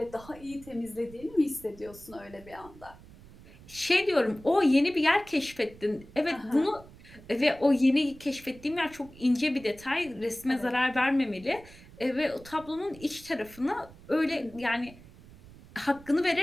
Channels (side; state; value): right; noise; rumble, 21 dB below the sound